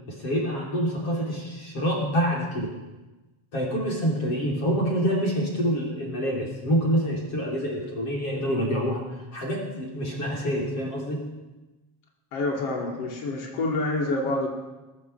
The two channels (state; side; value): late; right; 7.4 ms